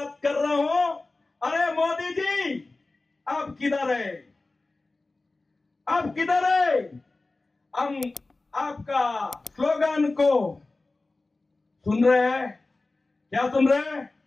कर रहा हूं। अरे मोदी जी, आप किधर है? आप किधर है? हम आपका स्लोगन को सुन रहे हैं। क्या सुन रहे हैं?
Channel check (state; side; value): quieter; right; 3.3 dB